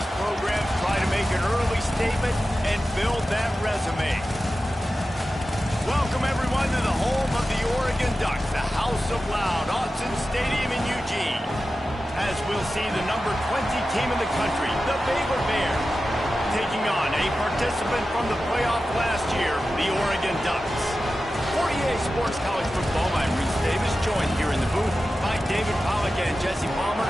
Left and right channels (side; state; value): both; normal; correlation 0.93